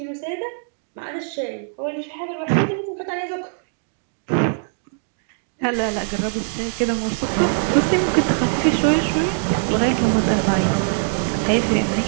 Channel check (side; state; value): left; silent; 64 dB below the other